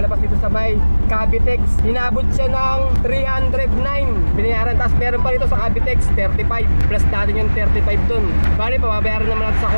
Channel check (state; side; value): inverted; both; correlation -1.00